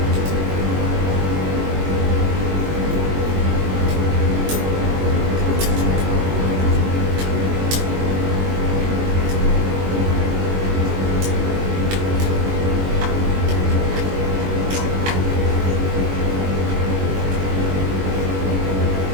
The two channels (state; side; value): late; left; 21 ms